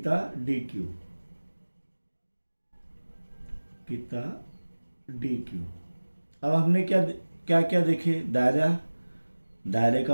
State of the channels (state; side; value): inverted; both; correlation -1.00